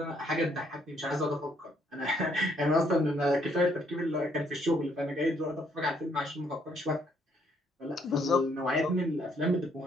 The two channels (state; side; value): normal; both; correlation 0.69